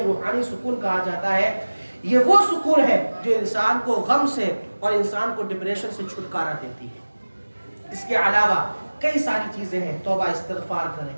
سکون کہا جاتا ہے۔ یہ وہ سکون ہے جو انسان کو غم سے اور انسان کو ڈپریشن سے چھٹکارا دیتی ہے۔ اس کے علاوہ کئی ساری چیزیں ہیں، توبہ استغفار کریں،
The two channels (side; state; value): both; inverted; correlation -1.00